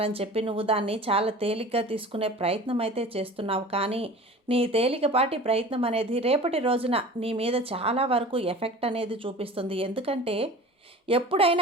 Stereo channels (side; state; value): both; normal; correlation 0.39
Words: చెప్పి నువ్వు దాన్ని చాలా తేలిగ్గా తీసుకునే ప్రయత్నం అయితే చేస్తున్నావు. కానీ నీ తేలికపాటి ప్రయత్నం అనేది రేపటి రోజున నీ మీద చాలా వరకు ఎఫెక్ట్ అనేది చూపిస్తుంది. ఎందుకంటే